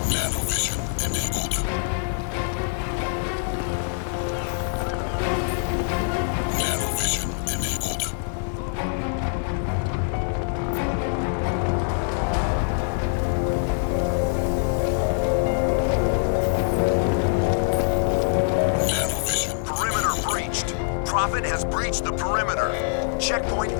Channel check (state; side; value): silent; right; 62 dB below the other